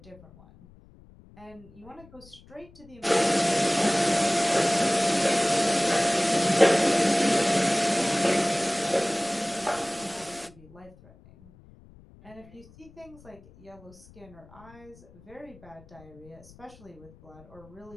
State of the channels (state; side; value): noise; left; rumble, 24 dB below the sound